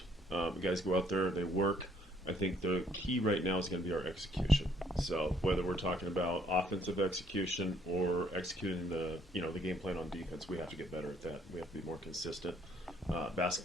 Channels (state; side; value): normal; both; correlation 0.65